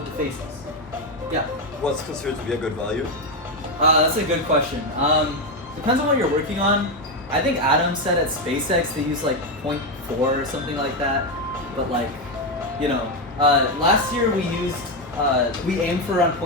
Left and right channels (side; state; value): both; normal; correlation 0.08